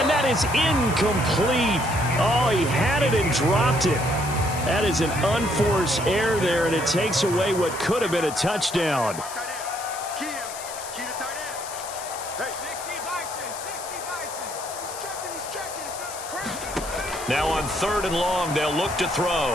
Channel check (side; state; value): left; noise; hiss, 11 dB below the sound